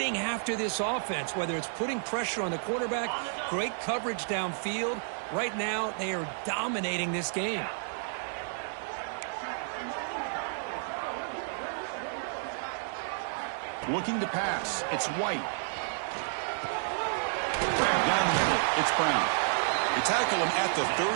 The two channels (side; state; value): left; silent; digital silence